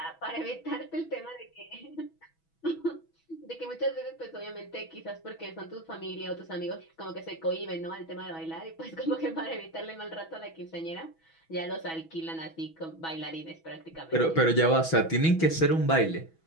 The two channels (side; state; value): right; late; 6.1 ms